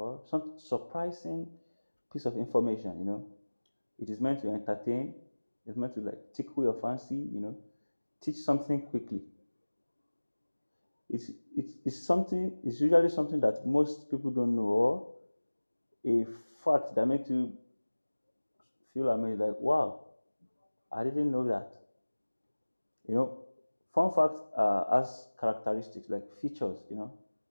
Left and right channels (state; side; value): inverted; both; correlation -1.00